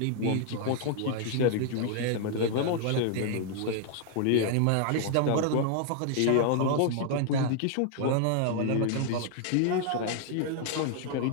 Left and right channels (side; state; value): both; different; correlation 0.00